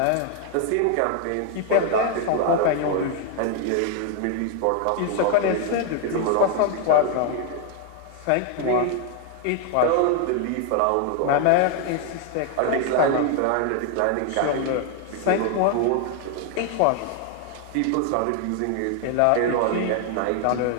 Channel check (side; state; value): both; different; correlation 0.01